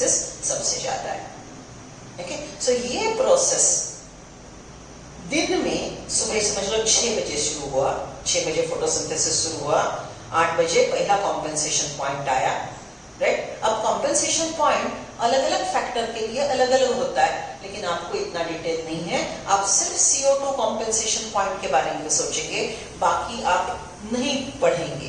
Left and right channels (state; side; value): identical; both; correlation 1.00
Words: सबसे ज्यादा है। ओके, सो ये प्रोसेस दिन में सुबह समझ लो 6 बजे शुरू हुआ, 6 बजे फोटोसिंथेसिस शुरू हुआ, 8 बजे पहला कॉम्पेंसेशन पॉइंट आया, राइट? अब कॉम्पेंसेशन पॉइंट अलग अलग फैक्टर के लिए अलग अलग होता है, लेकिन आपको इतना डिटेल नहीं है। आप सिर्फ CO2 कॉम्पेंसेशन पॉइंट के बारे में सोचेंगे, बाकी आप नहीं